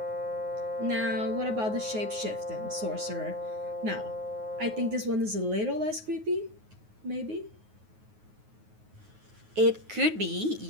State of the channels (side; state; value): left; late; 9.4 ms